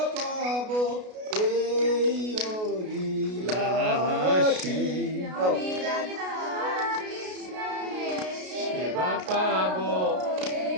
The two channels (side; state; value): left; late; 33 ms